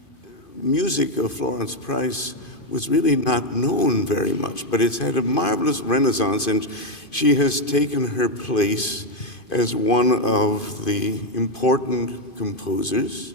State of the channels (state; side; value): late; right; 2.5 ms